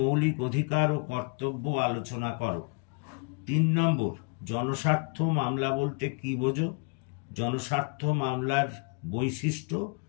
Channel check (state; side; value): quieter; right; 34.9 dB